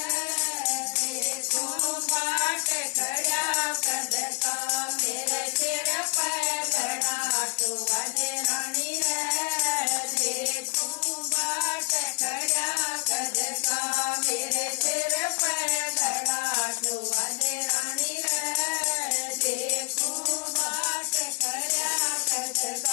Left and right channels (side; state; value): right; quieter; 29.3 dB